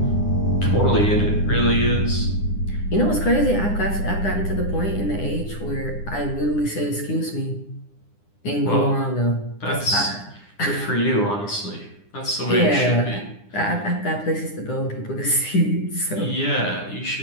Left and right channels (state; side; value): late; right; 9.9 ms